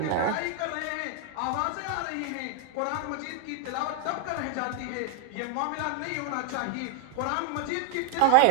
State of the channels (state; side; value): different; both; correlation 0.00